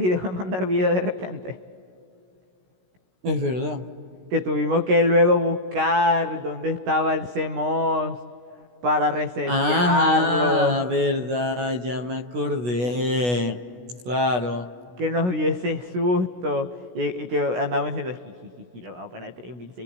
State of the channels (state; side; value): late; left; 16 ms